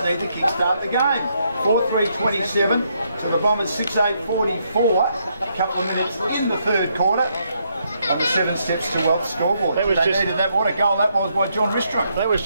need to kickstart the game. 4-3-27 to the Bombers 6-8-44. A couple of minutes in the third quarter. On the 7 steps to well scoreboard. They needed that. What a goal that was by John Ristrom. That was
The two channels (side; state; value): both; inverted; correlation -0.76